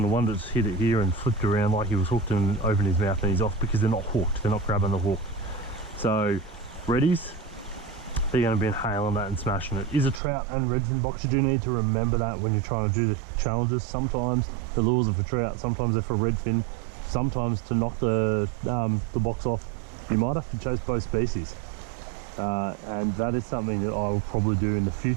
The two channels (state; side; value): drops out; left; at 10.2 s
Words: one that's hit it here and flipped around like he was hooked and opened his mouth, and he's off because they're not hooked, they're not grabbing the hook. So reddies, they're going to be inhaling that and smashing it. Is a trout and redfin box. You do need to remember that when you're trying to do the challenges. Sometimes the lures are for trout, sometimes they're for redfin, sometimes to knock the box off you might have to chase both species, and that is something that I will probably do in the